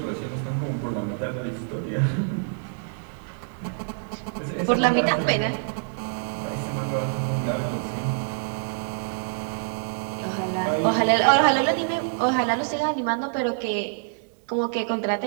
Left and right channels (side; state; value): left; silent; digital silence